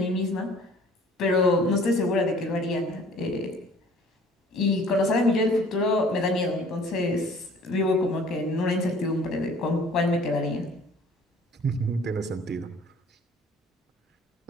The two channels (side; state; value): both; normal; correlation 0.52